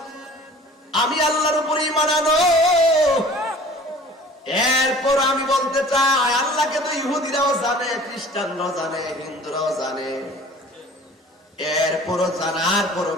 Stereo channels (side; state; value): both; normal; correlation 0.46